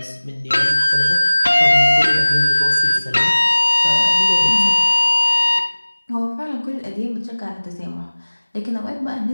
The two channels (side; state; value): both; inverted; correlation -1.00